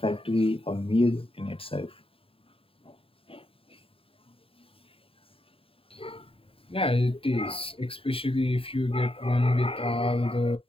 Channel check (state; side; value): late; right; 0.27 ms